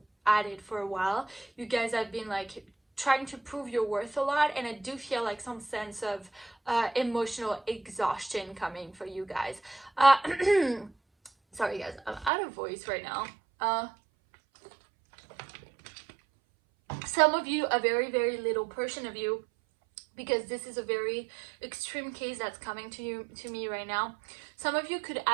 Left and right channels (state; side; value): drops out; left; at 12.3 s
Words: at it for a while. You guys have been like trying to prove your worth a lot, and I do feel like some sense of emotional exhaustion coming for you guys. Sorry guys, I'm out of voice right now. Some of you, a very, very little portion of you, because this is a very extreme case that's coming to me right now. Some of you could